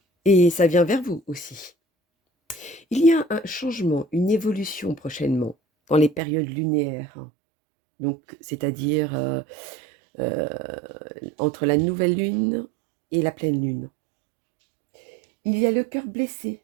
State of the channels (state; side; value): drops out; left; at 6.2 s